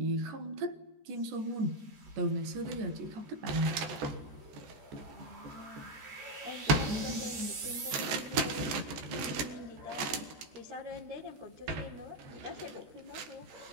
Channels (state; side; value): late; left; 13 ms